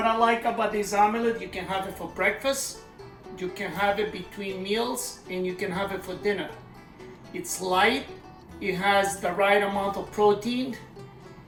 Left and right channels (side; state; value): both; identical; correlation 1.00